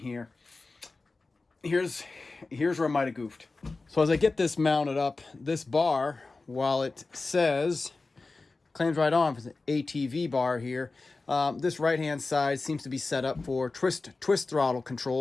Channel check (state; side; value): quieter; right; 3.6 dB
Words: Here's where I might have goofed. So as I get this mounted up, this bar, while it says, claims right on for the ATV bar here, this right-hand side seems to be set up for twist throttle